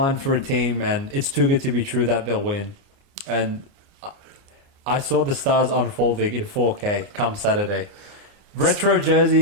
for a team and it's too good to be true that they'll win. And I saw the stars unfolding in 4K come Saturday. Retro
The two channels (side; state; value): left; late; 29 ms